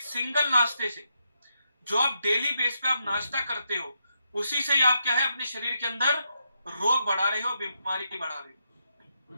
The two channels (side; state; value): both; inverted; correlation -0.82